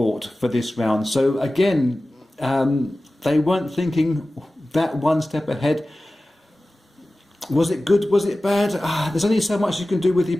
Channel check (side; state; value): both; normal; correlation 0.96